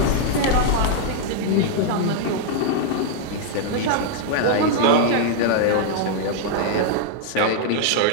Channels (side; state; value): both; different; correlation -0.01